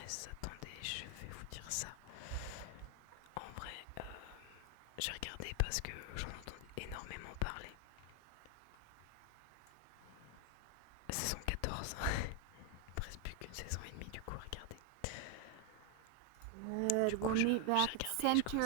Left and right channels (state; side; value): different; both; correlation 0.01